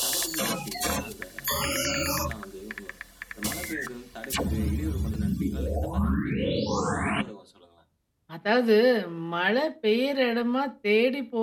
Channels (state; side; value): identical; both; correlation 1.00